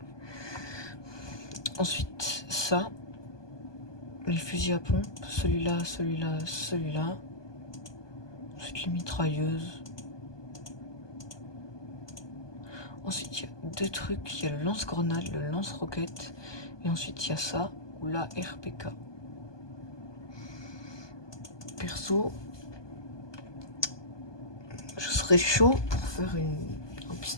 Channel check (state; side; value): late; right; 1.2 ms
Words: Ensuite, ça. Les fusils à pompe. Celui-là, celui-là, celui-là. Ensuite, les mitrailleuses. Ensuite, il y a deux trucs. Il y a le lance-grenade, le lance-roquette. Et ensuite, il y a ça, ou la RPK. Perso, je serais chaud pour faire un